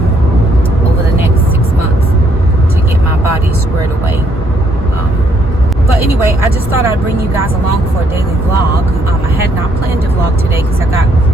over the next 6 months to get my body squared away. But anyway, I just thought I'd bring you guys along for a daily vlog. I had not planned to vlog today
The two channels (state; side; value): normal; both; correlation 0.70